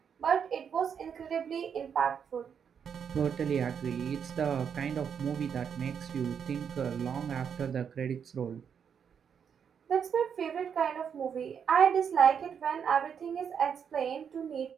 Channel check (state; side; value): quieter; left; 7.4 dB